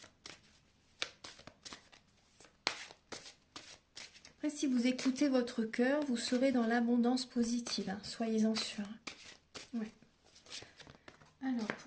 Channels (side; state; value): both; identical; correlation 1.00